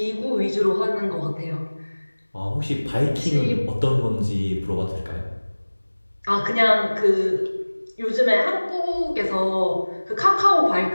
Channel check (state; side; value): inverted; both; correlation -1.00